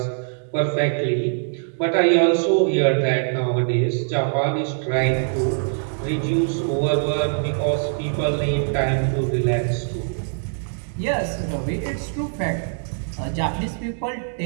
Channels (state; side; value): silent; left; digital silence